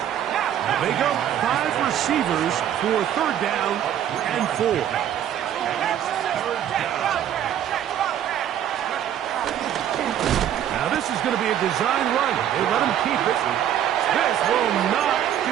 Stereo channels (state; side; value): quieter; left; 10.4 dB